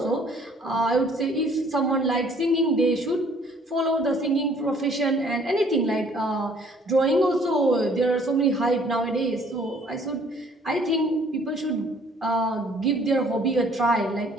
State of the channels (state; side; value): normal; both; correlation 0.59